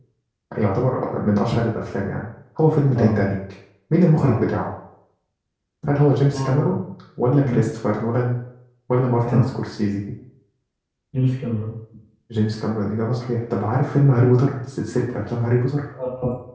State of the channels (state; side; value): identical; both; correlation 1.00